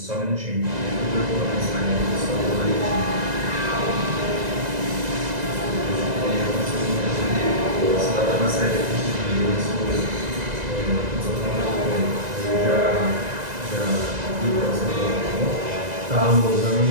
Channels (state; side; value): late; left; 1.9 ms